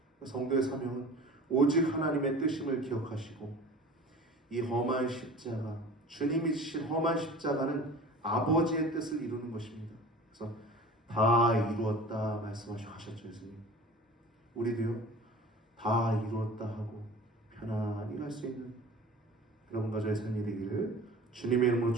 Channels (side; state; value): both; normal; correlation 0.40